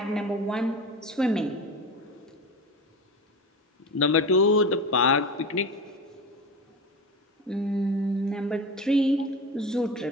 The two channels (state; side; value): normal; both; correlation 0.27